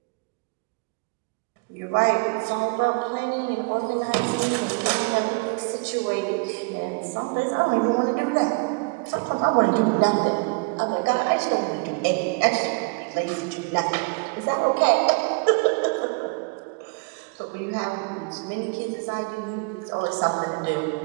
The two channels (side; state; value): left; quieter; 31.5 dB